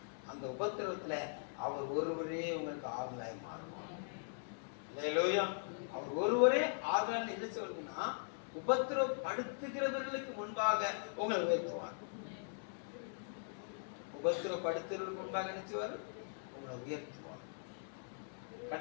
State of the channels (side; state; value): right; silent; digital silence